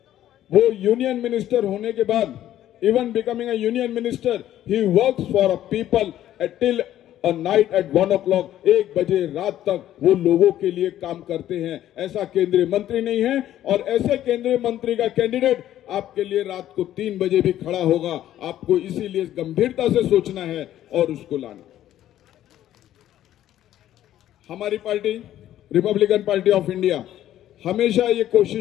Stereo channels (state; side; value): quieter; right; 12.4 dB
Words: वो यूनियन मिनिस्टर होने के बाद, even becoming a union minister, he works for a people till और नाइट एट 1 o'clock 1 बजे रात तक वो लोगों के लिए काम करते हैं। ऐसा केंद्रीय मंत्री नहीं है, और ऐसे केंद्रीय मंत्री का कैंडिडेट आपके लिए रात को 3 बजे भी खड़ा होगा। आपको इसीलिए गंभीरता से सोचना है और उसको लाना। हमारी party Republican party of India हमेशा ये